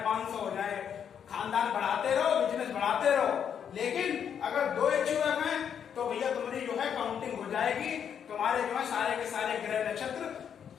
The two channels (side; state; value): right; quieter; 8.1 dB